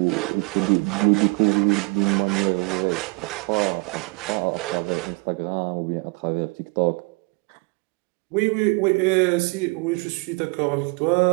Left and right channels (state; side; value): quieter; left; 29.3 dB